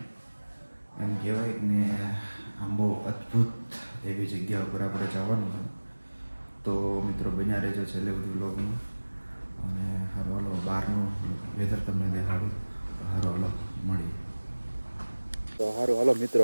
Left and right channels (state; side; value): inverted; both; correlation -1.00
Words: એમ કહેવાય ને. આમ બહુ અદ્ભુત એવી જગ્યા ઉપર આપણે જવાનું છે. તો મિત્રો બન્યા રહેજો છેલ્લે બધું બ્લોગમાં અને હારો હાલો બહારનું વેધર તમને દેખાડું. હારો હાલો મળીએ. તો હારો હાલો મિત્રો,